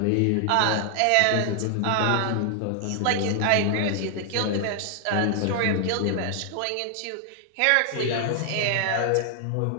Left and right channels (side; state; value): both; different; correlation 0.00